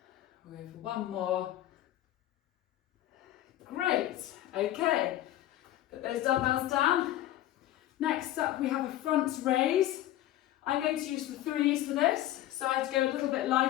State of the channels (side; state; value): right; quieter; 14.0 dB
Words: We'll go for one more. Great. Okay. Put those dumbbells down. Next up we have a front raise. I'm going to use the threes for this, so I have to go a little bit